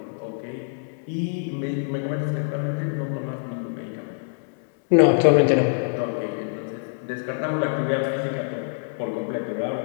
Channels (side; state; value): right; silent; digital silence